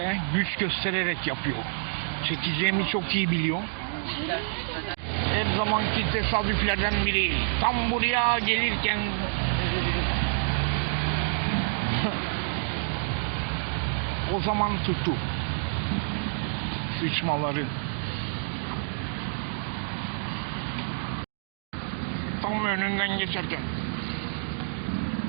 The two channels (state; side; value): silent; left; digital silence